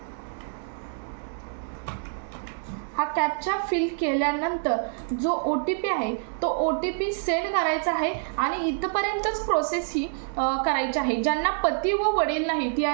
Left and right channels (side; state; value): left; silent; digital silence